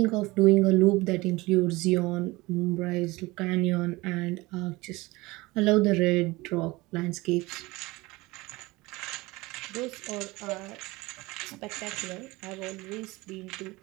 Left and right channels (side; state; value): left; quieter; 21.7 dB